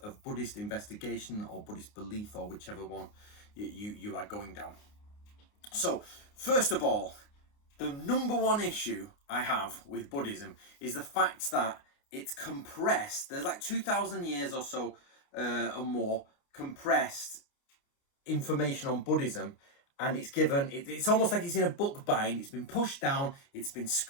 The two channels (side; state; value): right; late; 29 ms